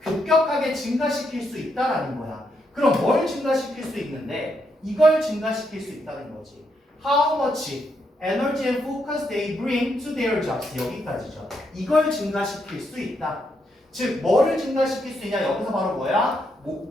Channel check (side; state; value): both; normal; correlation 0.78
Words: 급격하게 증가시킬 수 있다라는 거야. 그럼 뭘 증가시킬 수 있는데 이걸 증가시킬 수 있다는 거지. How much energy and focus they bring to their jobs. 여기까지죠. 이걸 증가시킬 수 있다. 즉, 뭐를 증가시킬 수 있냐? 여기서 바로 뭐야?